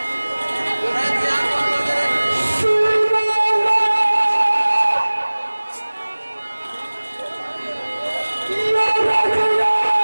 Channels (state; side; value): inverted; both; correlation -1.00